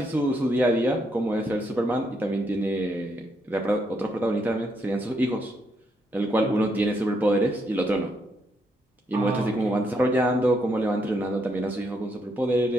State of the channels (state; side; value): normal; both; correlation 0.76